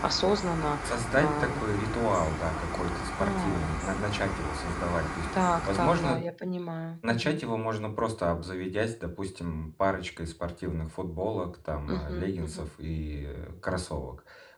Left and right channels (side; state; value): both; identical; correlation 1.00